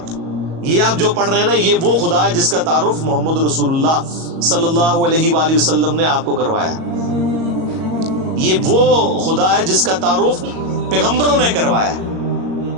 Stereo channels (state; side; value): late; left; 37 ms